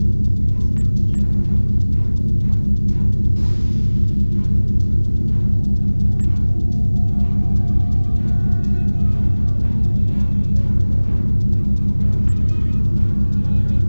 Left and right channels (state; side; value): inverted; both; correlation -1.00